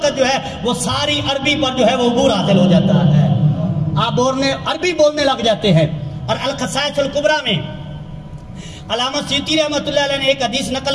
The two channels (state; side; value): identical; both; correlation 1.00